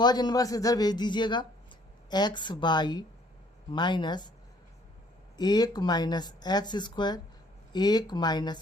इनवर्स इधर भेज दीजिएगा, x by minus 1 minus x square 1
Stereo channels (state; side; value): normal; both; correlation 0.61